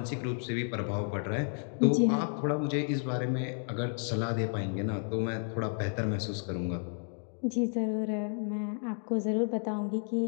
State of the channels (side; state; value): right; silent; 56 dB below the other